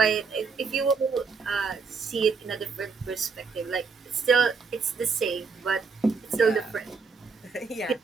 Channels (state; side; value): quieter; left; 5.0 dB